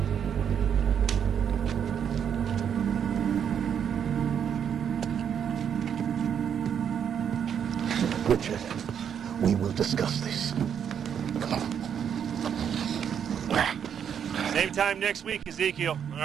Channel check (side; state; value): left; quieter; 8.2 dB